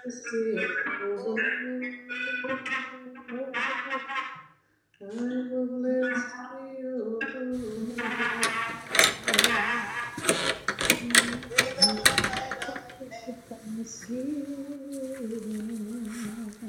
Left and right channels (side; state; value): both; identical; correlation 1.00